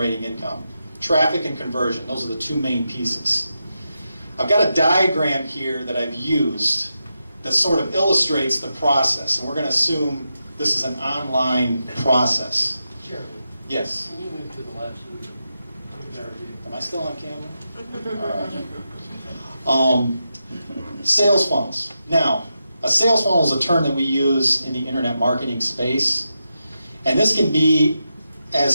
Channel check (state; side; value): inverted; both; correlation -0.88